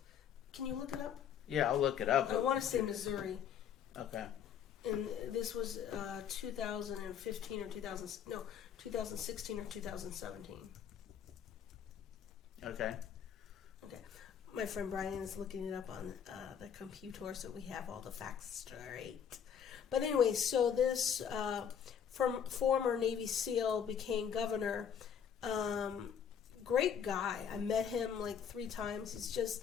Can you look it up? Yeah, I'll look it up. I want to say Missouri. Okay. And this was 2015 or 2016 or 2017. Okay. Okay. My friend Brian is looking it up on the computer, so we have all the facts straight. But anyway, so this from former Navy SEAL became governor. Great guy. I met him like 3 times. He's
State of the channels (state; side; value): quieter; right; 8.2 dB